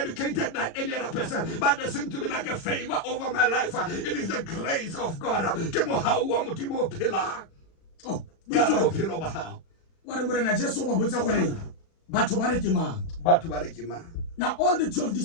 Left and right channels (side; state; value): right; late; 36 ms